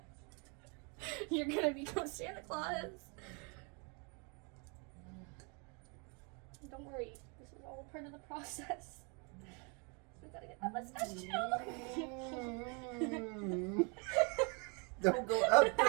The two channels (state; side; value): quieter; left; 33.7 dB